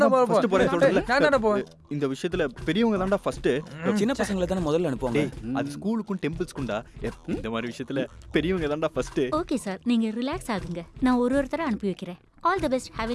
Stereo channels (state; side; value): identical; both; correlation 1.00